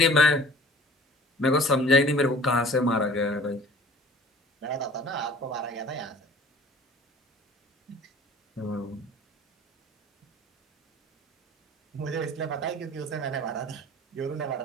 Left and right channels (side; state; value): both; normal; correlation 0.47